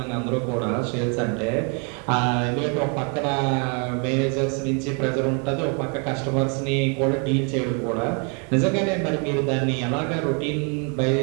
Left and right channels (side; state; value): left; quieter; 36.8 dB